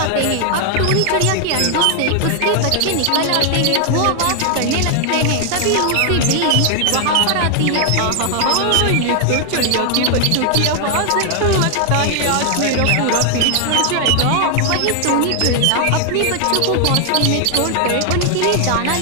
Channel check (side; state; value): both; different; correlation 0.00